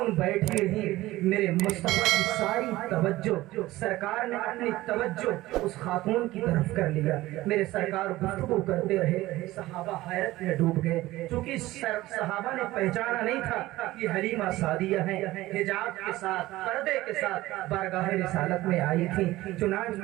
بیٹھی رہی، میرے مصطفیٰ کی ساری توجہ، سرکار نے اپنی توجہ اس خاتون کی طرف کر لیا۔ میرے سرکار گفتگو کرتے رہے، صحابہ حیرت میں ڈوب گئے، چونکہ صحابہ نے پہچانا نہیں تھا کہ حلیمہ سعدیہ ہیں، حجاب کے ساتھ پردے کے ساتھ بارگاہ رسالت میں آئی تھی۔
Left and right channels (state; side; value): quieter; left; 17.4 dB